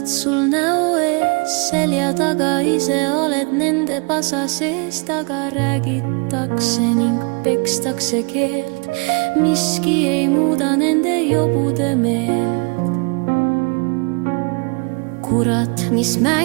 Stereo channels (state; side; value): quieter; left; 33.6 dB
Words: sul näo ees, selja taga ise oled nende pasa sees. Taga räägitakse ning pekstakse keelt, miski ei muuda nende jobude meelt. Kurat, mis